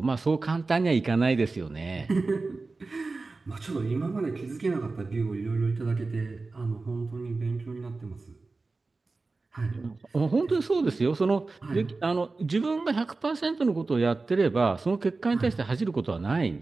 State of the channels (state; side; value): quieter; left; 3.7 dB